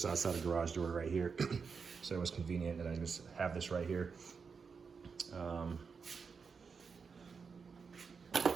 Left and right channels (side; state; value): left; quieter; 5.5 dB